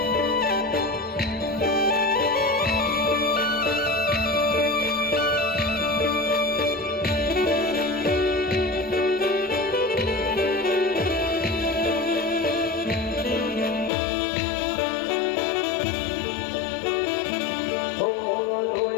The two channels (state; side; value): drops out; right; at 13.9 s